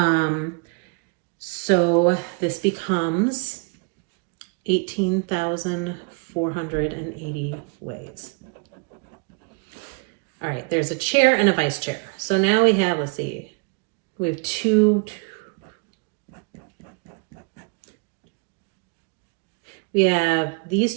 So this becomes 18,480 ways. All right, there's a chair and a vice chair. So now we have, let's see, we have two. We have these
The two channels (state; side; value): quieter; left; 34.0 dB